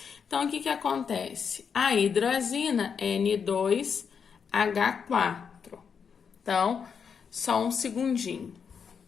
Então, o que acontece? A hidrazina é N2H4. Então, só um segundinho.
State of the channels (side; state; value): right; quieter; 6.6 dB